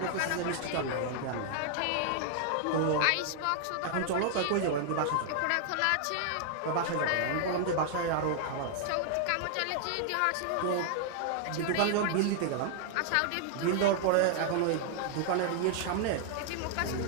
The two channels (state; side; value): different; both; correlation 0.00